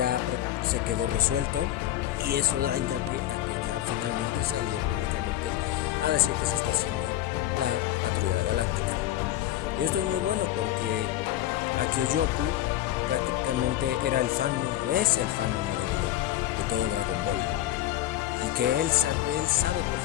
se quedó resuelto, y eso da hincapié a que ya finalmente salió públicamente a decir que se está haciendo la Patrulla Galáctica. Y esto es muy bueno porque Akio Yoku prácticamente era es el fan número uno de todo Dragon Ball. Y que él sabe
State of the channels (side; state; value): right; quieter; 13.7 dB